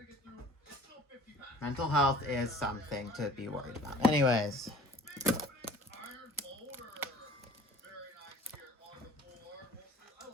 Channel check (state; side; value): normal; both; correlation 0.47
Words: Mental health is something to be worried about. Anyways.